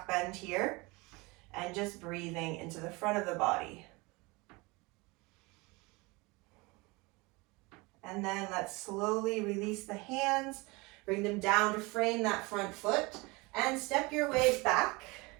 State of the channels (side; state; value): left; quieter; 25.1 dB